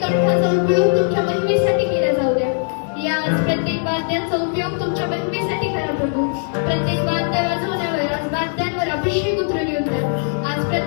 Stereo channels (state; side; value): silent; right; digital silence